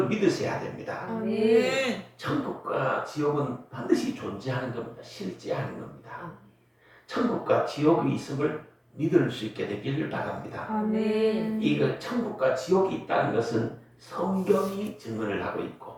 믿으셔야 됩니다. 천국과 지옥은 반드시 존재하는 겁니다. 실제하는 겁니다. 천국과 지옥이 있음을 믿을 수 있게 되기를 바랍니다. 이거 천국과 지옥이 있다는 것은 성경이 증언을 하고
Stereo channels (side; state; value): both; identical; correlation 1.00